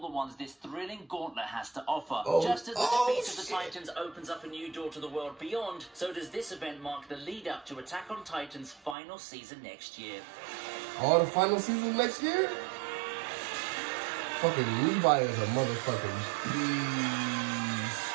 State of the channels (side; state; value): left; drops out; at 9.0 s